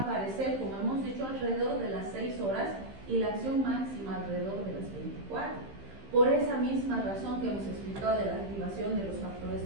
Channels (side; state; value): left; late; 15 ms